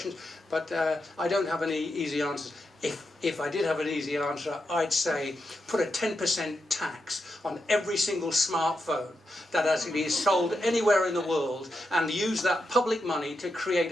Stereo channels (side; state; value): both; normal; correlation 0.86